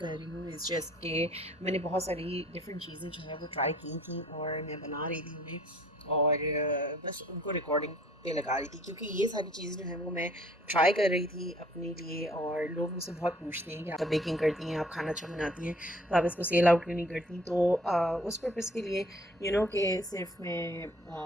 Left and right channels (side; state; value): both; normal; correlation 0.56